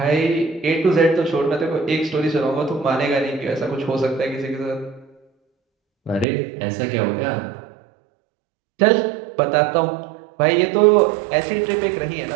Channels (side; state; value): left; drops out; at 6.2 s